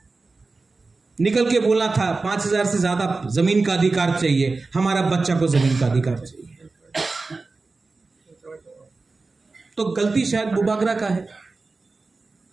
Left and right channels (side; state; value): left; quieter; 3.8 dB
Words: निकल के बोलना था 5,000 से ज्यादा जमीन का अधिकार चाहिए, हमारा बच्चा को जमीन का अधिकार चाहिए। तो गलती शायद बुबागरा का है,